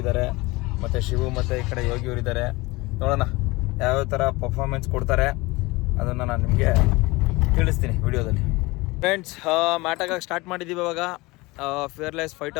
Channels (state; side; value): quieter; right; 22.7 dB